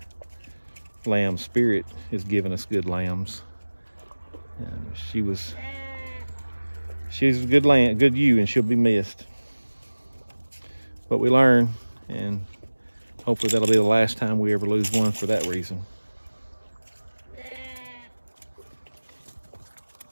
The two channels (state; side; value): inverted; both; correlation -1.00